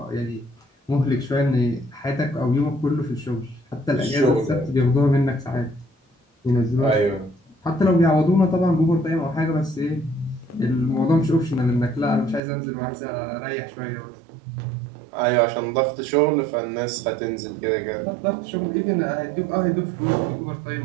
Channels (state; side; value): drops out; left; at 12.4 s